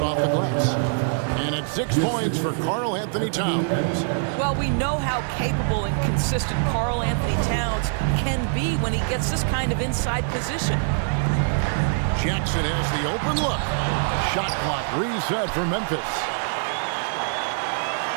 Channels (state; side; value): silent; left; digital silence